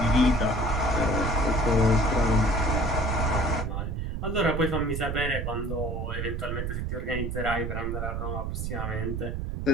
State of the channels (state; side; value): noise; right; rumble, 3 dB below the sound